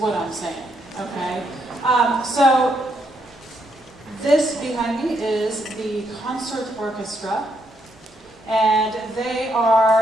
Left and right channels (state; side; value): normal; both; correlation 0.76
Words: I'm saying, okay? So this behind me is the concert orchestra, and they